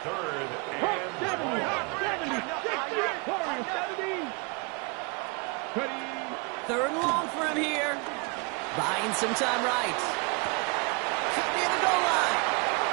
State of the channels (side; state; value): left; quieter; 32.0 dB